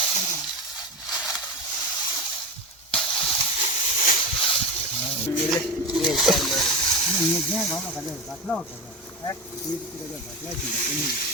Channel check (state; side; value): normal; both; correlation 0.23